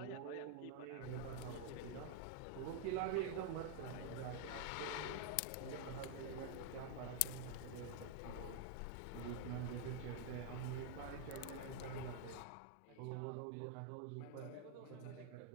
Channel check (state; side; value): different; both; correlation 0.00